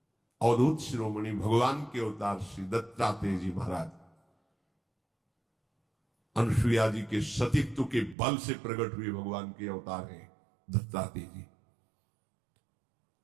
अवधूत शिरोमणि भगवान के अवतार श्री दत्तात्रेय जी महाराज अनुसुईया जी के सतीत्व के बल से प्रकट हुए भगवान के अवतार हैं दत्तात्रेय जी।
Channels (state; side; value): drops out; left; at 8.2 s